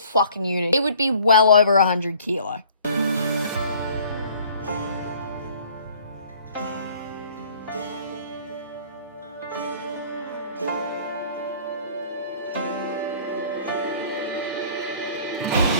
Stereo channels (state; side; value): inverted; both; correlation -0.54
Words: unit. It would be well over 100 kilo.